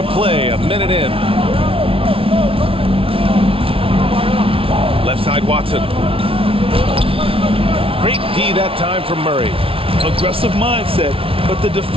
play, a minute in. Left side, Watson. Great D that time from Murray. Aggressive mindset, but the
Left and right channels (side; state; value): left; late; 0.26 ms